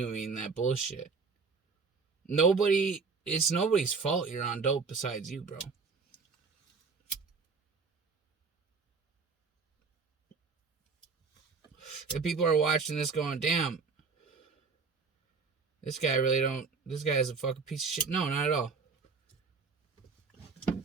that bullshit. It's nobody's fault you're on dope besides you, bro. If people are watching this going, damn, this guy is a fucking piece of shit. No, not at all.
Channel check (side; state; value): left; quieter; 4.9 dB